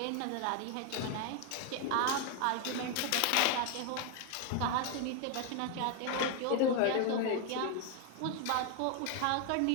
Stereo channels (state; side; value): different; both; correlation 0.01